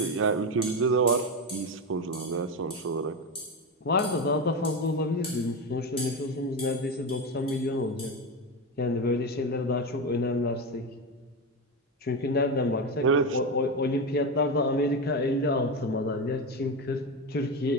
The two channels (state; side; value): normal; both; correlation 0.16